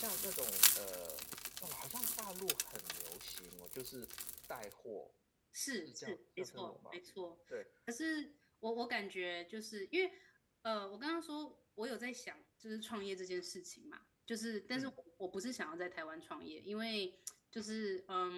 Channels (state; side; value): identical; both; correlation 1.00